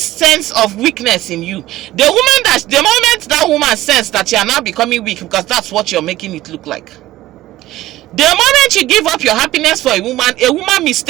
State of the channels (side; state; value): left; quieter; 15.8 dB